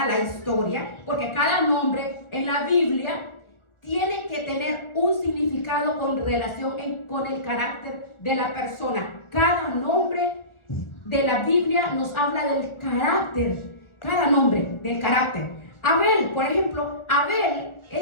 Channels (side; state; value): right; late; 1.4 ms